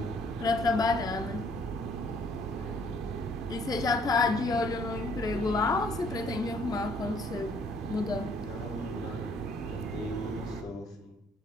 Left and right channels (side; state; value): both; normal; correlation 0.63